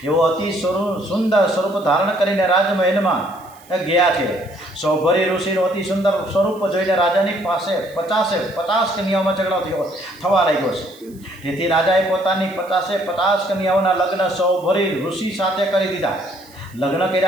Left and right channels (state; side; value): noise; right; hiss, 26 dB below the sound